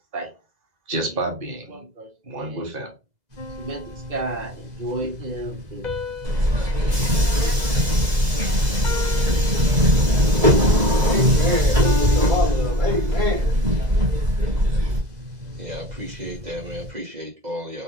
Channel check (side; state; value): left; late; 2.0 ms